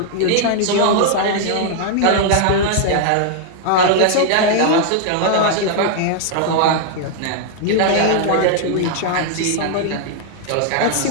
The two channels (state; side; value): different; both; correlation -0.01